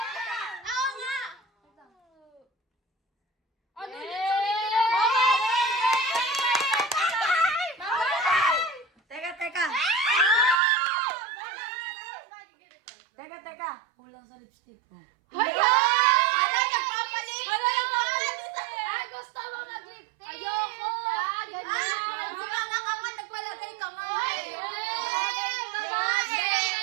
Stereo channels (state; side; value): drops out; left; at 10.6 s